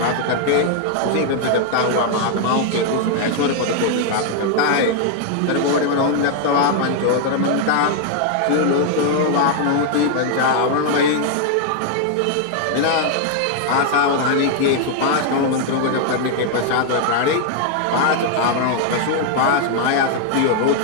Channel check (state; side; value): different; both; correlation 0.00